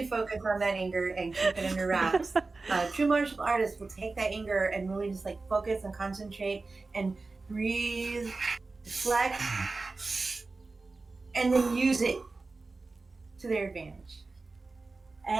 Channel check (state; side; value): quieter; left; 3.7 dB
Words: focus on that anger and keep it under wraps. True martial artists will take that anger and really just like focus and concentrate and breathe, deflect, and then use it to their advantage.